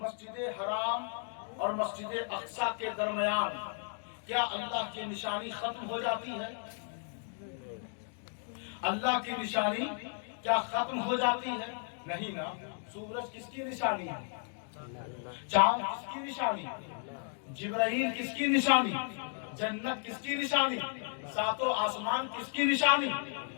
حرام اور مسجد اقصی کے درمیان کیا اللہ کی نشانی ختم ہو جاتی ہے؟ اللہ کی نشانی کیا ختم ہو جاتی ہے؟ نہیں نا۔ سورج کس کی نشانی ہے؟ چاند کس کی نشانی؟ جبرائیل کس کی نشانی؟ جنت کس کی نشانی؟ ساتوں آسمان کس کی نشانی؟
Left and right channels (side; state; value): right; silent; 55 dB below the other